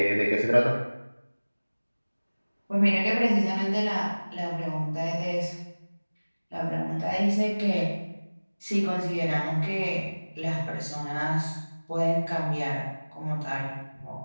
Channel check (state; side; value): inverted; both; correlation -1.00